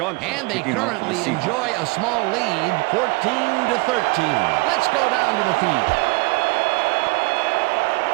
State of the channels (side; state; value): left; quieter; 27.1 dB